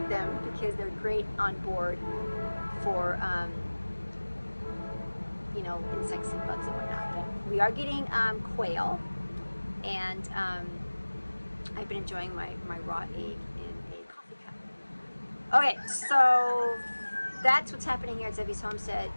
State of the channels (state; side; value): inverted; both; correlation -1.00